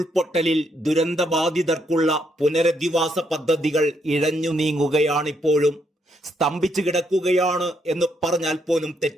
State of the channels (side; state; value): both; normal; correlation 0.75